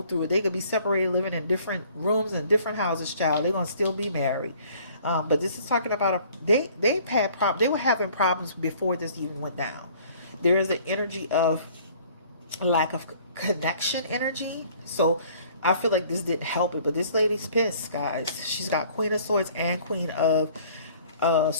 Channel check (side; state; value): both; inverted; correlation -0.55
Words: through it. They could be separated, living in different rooms and different houses, child. They're going to still be married. But this is talking about, they've had problems. They were having problems before this even went down. There is an energy of lack of connection energy. So I feel like this didn't help it, but this lady's pissed, guys. She's got Queen of Swords and Queen of